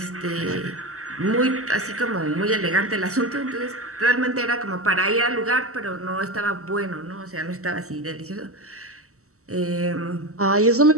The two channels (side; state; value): left; late; 0.64 ms